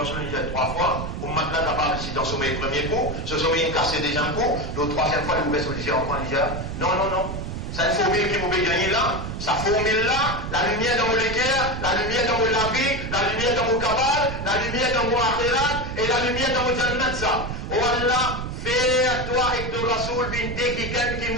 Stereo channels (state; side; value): noise; right; rumble, 6 dB below the sound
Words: dit trois fois. Ou maintenant capable ici dans son premier coup, ce sommet il casse déjà un coup, la troisième fois il vous baisse au lycée encore il dit non. C'est une formule qui vous peut gagner là, sa formule-là, la lumière dans mon équerre, la lumière dans mon labi, la lumière dans mon cabal, la lumière dans mon akhirat et la lumière dans mon jannat ça. Oh Allah, fais à toi et ton rasoul bin de quelqu'un qui